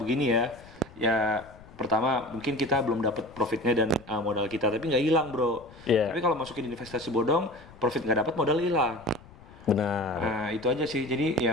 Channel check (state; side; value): noise; left; rumble, 22 dB below the sound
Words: ya pertama mungkin kita belum dapat profitnya dan modal kita, tapi nggak hilang bro. Tapi kalau masukin investasi bodong, profit nggak dapat, modal hilang. Benar. Nah itu aja sih, jadi